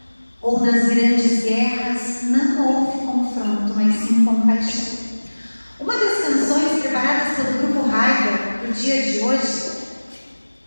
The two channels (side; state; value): both; inverted; correlation -1.00